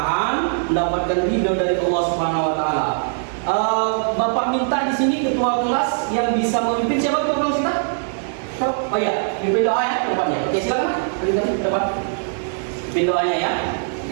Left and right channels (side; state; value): left; silent; digital silence